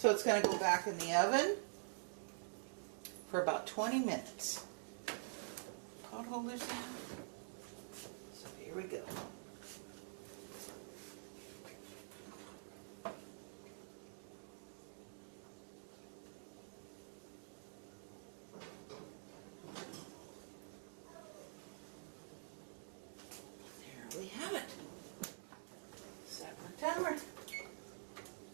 it's going to go back in the oven for about 20 minutes. Pot holders in. So here we go. There we have it. Set my timer.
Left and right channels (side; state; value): left; silent; digital silence